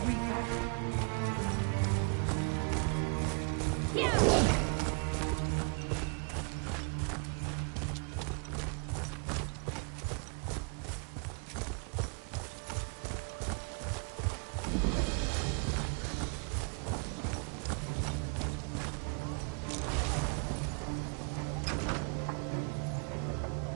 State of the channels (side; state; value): left; quieter; 39.2 dB